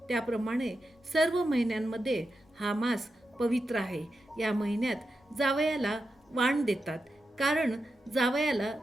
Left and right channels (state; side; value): normal; both; correlation 0.89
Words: त्याप्रमाणे सर्व महिन्यांमध्ये हा मास पवित्र आहे. या महिन्यात जावयाला वाण देतात, कारण जावयाला